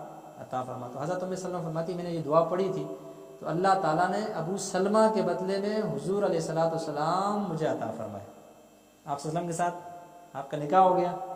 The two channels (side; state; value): both; identical; correlation 1.00